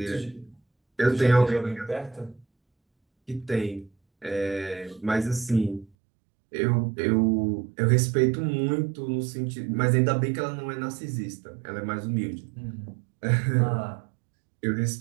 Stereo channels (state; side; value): drops out; left; at 5.9 s